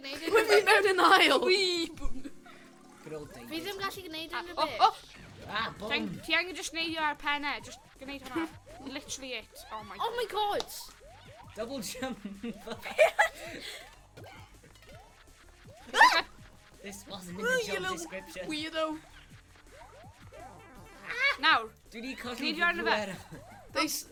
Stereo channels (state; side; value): identical; both; correlation 1.00